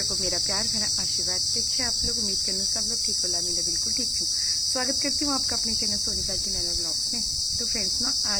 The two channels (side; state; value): right; noise; hiss, 19 dB below the sound